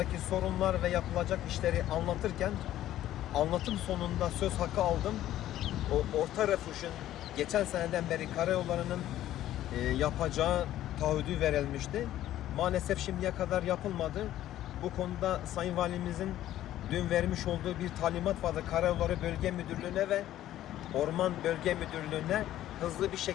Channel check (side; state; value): right; quieter; 13.2 dB